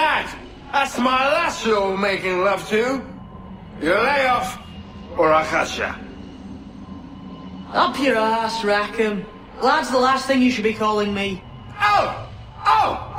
That's my lass you're making love to. You lay off, or I'll catch ya. Up your ass, Rackham. Lad's the last thing you should be calling me.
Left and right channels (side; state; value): both; identical; correlation 1.00